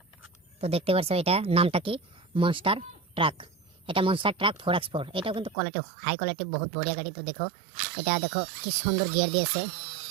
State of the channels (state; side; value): drops out; left; at 5.6 s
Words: তো দেখতে পাচ্ছ, এটা নামটা কি, মনস্টার ট্রাক। এটা মনস্টার ট্রাক 4x4। এটাও কিন্তু কোয়ালিটি, হাই কোয়ালিটি, বহুত বড়িয়া গাড়ি। তো দেখো, এটা দেখো কি সুন্দর গিয়ার দিয়েছে,